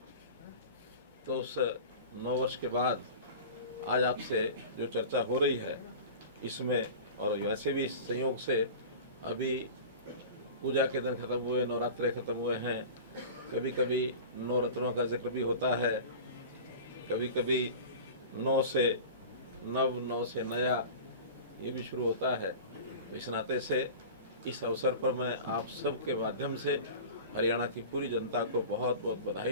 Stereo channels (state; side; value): inverted; both; correlation -0.36